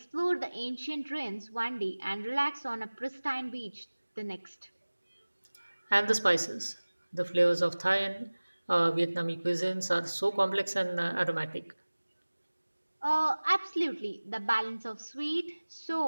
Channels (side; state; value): both; inverted; correlation -1.00